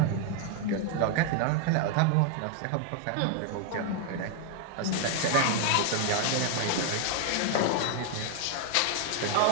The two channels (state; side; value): different; both; correlation 0.00